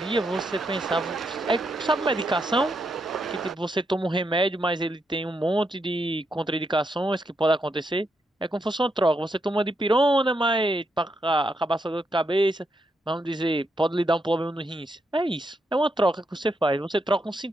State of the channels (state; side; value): normal; both; correlation 0.81